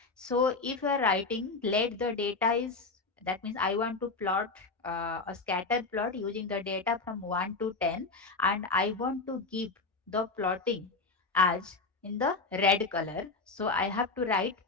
So if you are writing let the data is, that means I want to plot a scatter plot using the data from 1 to 10, and I want to give the plotting as in the red color. So I have to write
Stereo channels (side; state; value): right; quieter; 3.9 dB